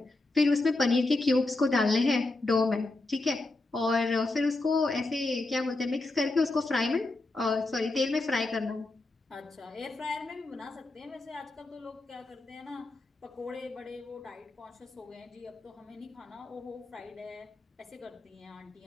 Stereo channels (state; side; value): quieter; right; 3.0 dB